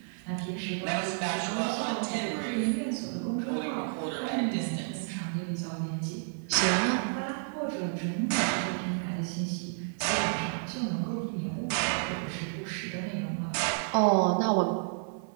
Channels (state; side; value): silent; left; 57 dB below the other